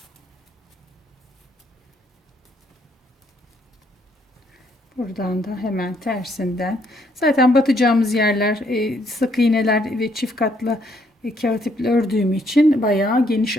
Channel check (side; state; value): both; normal; correlation 0.70